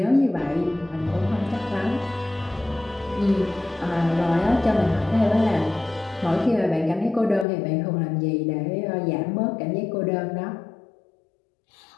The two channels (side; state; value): right; drops out; at 7.5 s